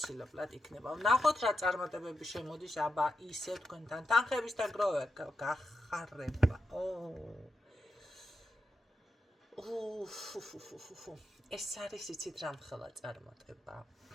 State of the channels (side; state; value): both; normal; correlation 0.87